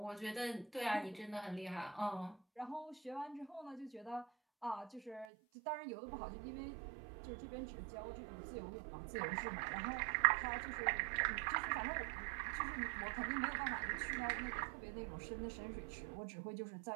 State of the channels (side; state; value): left; drops out; at 5.2 s